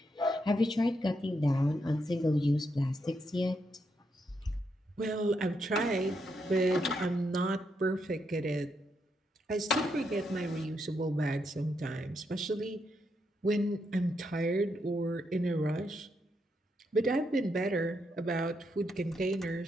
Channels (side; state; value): both; normal; correlation 0.80